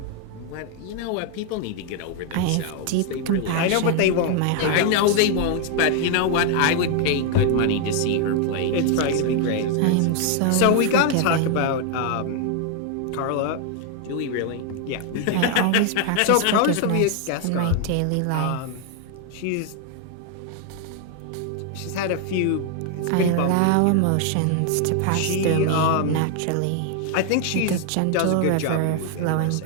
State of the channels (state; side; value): different; both; correlation 0.00